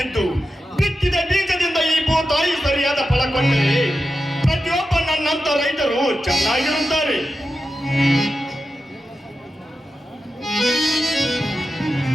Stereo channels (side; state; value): both; normal; correlation 0.90